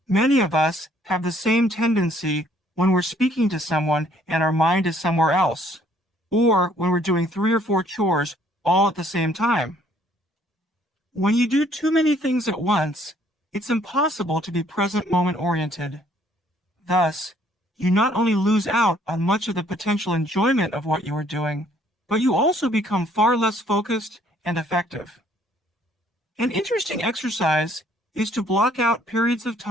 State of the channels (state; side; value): normal; both; correlation 0.63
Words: Many of us have the same tendency when we're speaking to someone and our mind is somewhere else, or when we're doing 3 or 4 chores all at the same time. When you do too many things at once, it's impossible to be present moment-oriented. Thus, you not only lose out on much of the potential enjoyment of what you are doing, but you also become far less focused and effective. An interesting exercise is to block out periods of